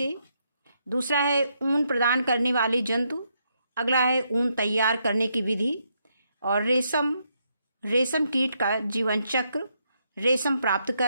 दूसरा है ऊन प्रदान करने वाले जंतु। अगला है ऊन तैयार करने की विधि और रेशम कीट का जीवन चक्र, रेशम प्राप्त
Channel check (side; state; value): both; inverted; correlation -0.78